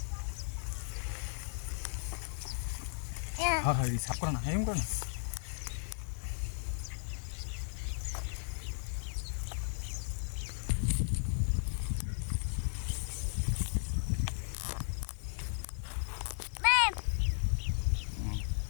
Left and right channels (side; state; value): right; silent; 54 dB below the other